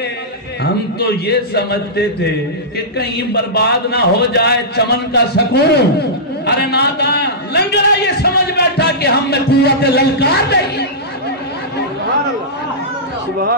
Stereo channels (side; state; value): both; normal; correlation -0.15